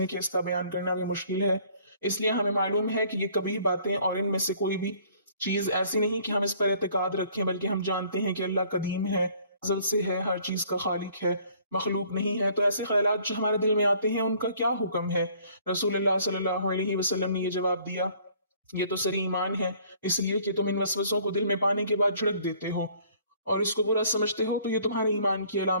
کہ اس کا بیان کرنا بھی مشکل ہے۔ اس لیے ہمیں معلوم ہے کہ یہ کبھی باتیں اور ان میں سے کوئی بھی چیز ایسی نہیں کہ ہم اس پر اعتقاد رکھیں، بلکہ ہم جانتے ہیں کہ اللہ قدیم ہے، ازل سے ہے، ہر چیز کا خالق ہے، مخلوق نہیں ہے۔ تو ایسے خیالات جو ہمارے دل میں آتے ہیں ان کا کیا حکم ہے؟ رسول اللہ صلی اللہ علیہ وسلم نے یہ جواب دیا، یہ تو سری ایمان ہے، اس لیے کہ تم ان وسوسوں کو دل میں پانے کے بعد جھڑک دیتے ہو اور اس کو برا سمجھتے ہو، تو یہ تمہارے ایمان کی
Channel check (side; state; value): both; inverted; correlation -0.58